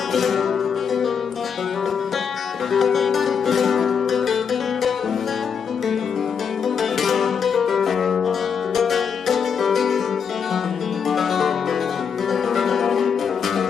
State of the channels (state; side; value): quieter; right; 6.8 dB